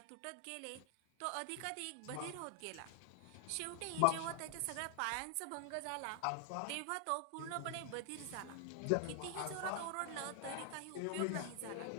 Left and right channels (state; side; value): different; both; correlation 0.00